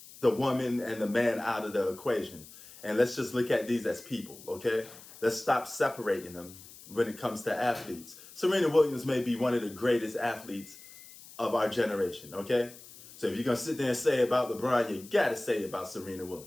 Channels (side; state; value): left; noise; hiss, 19 dB below the sound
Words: the woman and the man out of the equation, and let's just look at these as people, okay? Let's stop separating them when it comes to athletes. Serena Williams may be one of the greatest athletes of our generation, okay? So if you're going to sit there and say about LeBron, you got to say about Serena